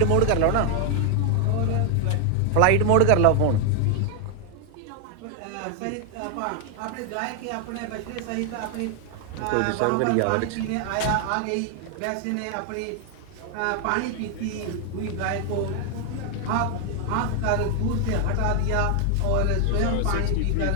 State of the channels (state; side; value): different; both; correlation 0.00